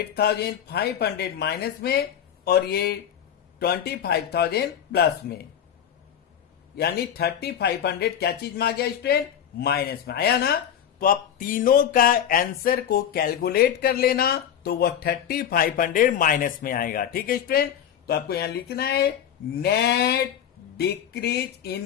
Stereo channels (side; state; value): right; quieter; 9.4 dB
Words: माइनस में और ये 25,000 प्लस में, यानी 3500 क्या चीज में आ गया स्टूडेंट? माइनस में आया ना। तो आप तीनों का आंसर को कैलकुलेट कर लेना, तो वह 3500 माइनस में आएगा, ठीक है स्टूडेंट? तो आपको यहां लिखना है नेट डिक्रीज इन